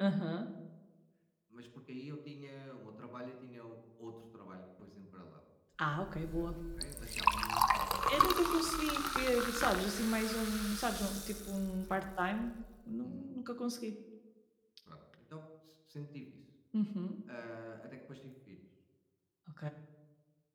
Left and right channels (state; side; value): identical; both; correlation 1.00